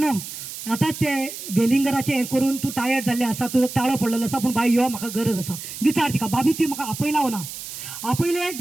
आतां ते वेलिंगराचें हें करून तूं टायर्ड जाल्लें आसा, तुजो ताळो पडलेलो आसा, पूण बाय यो म्हाका गरज आसा. विचार तिका, बाबी तुवें म्हाका आपयला ना? आपयले.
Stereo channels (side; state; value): right; noise; hiss, 10 dB below the sound